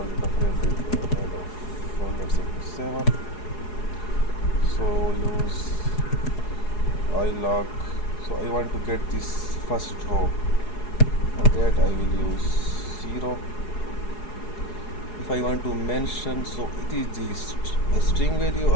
data frame is made of let's say 7. So use iloc. So I want to get this first row. For that I will use 0. If I want to mention, so it is the string value,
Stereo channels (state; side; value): late; right; 4.8 ms